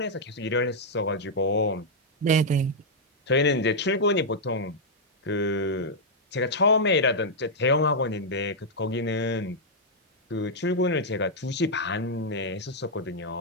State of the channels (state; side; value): normal; both; correlation -0.05